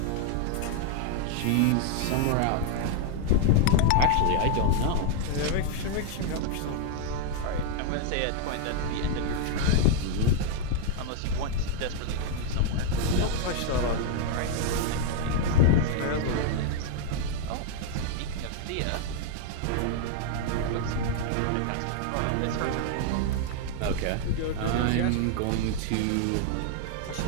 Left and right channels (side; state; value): both; different; correlation 0.00